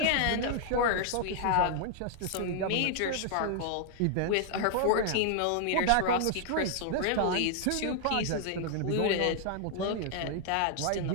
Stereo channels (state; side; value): different; both; correlation 0.00